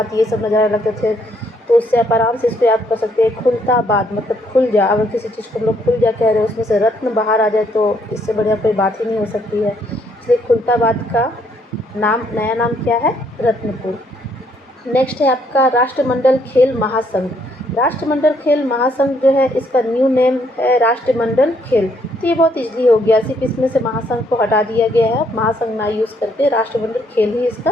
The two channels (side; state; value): both; normal; correlation 0.69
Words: ये सब नज़ारे लगते थे। तो उससे आप आराम से इसको याद कर सकते हैं, खुलताबाद मतलब खुल जा। अगर किसी चीज़ को हम लोग खुल जा कह रहे हैं, उसमें से रत्न बाहर आ जाए तो इससे बढ़िया कोई बात ही नहीं हो सकती है। इसलिए खुलताबाद का नाम, नया नाम क्या है? रत्नपुर। नेक्स्ट है आपका राष्ट्रमंडल खेल महासंघ। राष्ट्रमंडल खेल महासंघ जो है, इसका न्यू नेम है राष्ट्रमंडल खेल। तो ये बहुत इजली हो गया, सिर्फ इसमें से महासंघ को हटा दिया गया है, महासंघ ना यूज़ करके राष्ट्रमंडल खेल ही